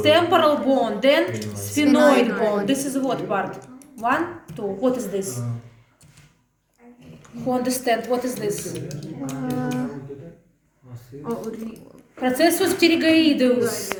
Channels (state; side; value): identical; both; correlation 1.00